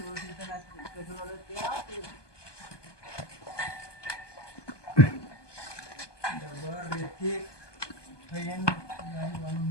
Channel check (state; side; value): late; right; 1.2 ms